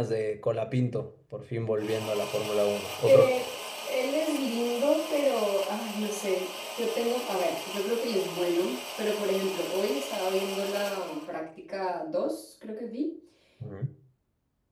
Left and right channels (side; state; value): both; identical; correlation 1.00